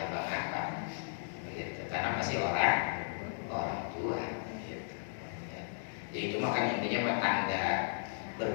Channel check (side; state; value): right; silent; digital silence